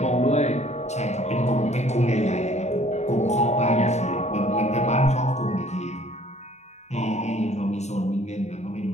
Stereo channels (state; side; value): late; right; 0.32 ms